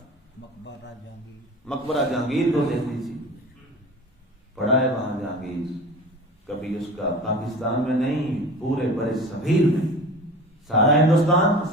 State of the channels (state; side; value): normal; both; correlation 0.37